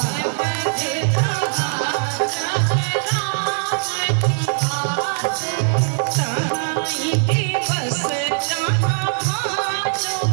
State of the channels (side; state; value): left; silent; digital silence